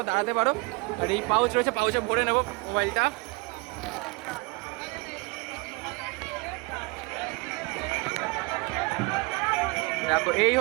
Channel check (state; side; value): quieter; left; 27.0 dB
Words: দাঁড়াতে পারো। আর এই পাউচ রয়েছে, পাউচে ভরে নেবো মোবাইলটা। দেখো এই